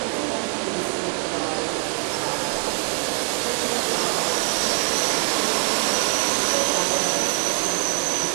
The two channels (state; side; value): quieter; left; 37.3 dB